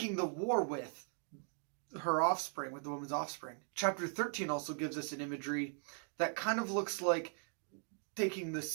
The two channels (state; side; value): silent; left; 52 dB below the other